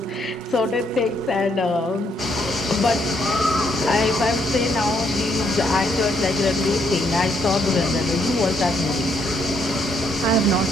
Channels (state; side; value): normal; both; correlation 0.72